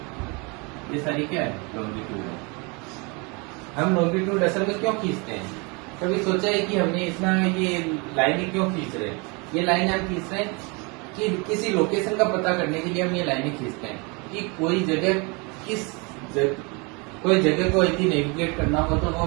ये सारी क्या है, लॉन्गिट्यूड है। हम लॉन्गिट्यूड असल में क्यों खींचते हैं, कभी सोचा है कि हमने इतना ये लाइनें क्यों खींच रहे हैं। ये लाइन हम खींच रहे हैं कि किसी लोकेशन का पता करने के लिए हम ये लाइनें खींचते हैं कि कोई जगह कोई जगह को यदि नेविगेट करना हो तो वो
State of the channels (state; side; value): quieter; left; 29.9 dB